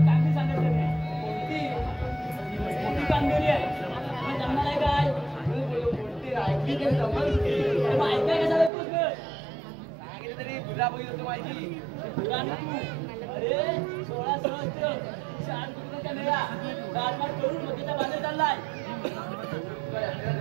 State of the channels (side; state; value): left; drops out; at 8.7 s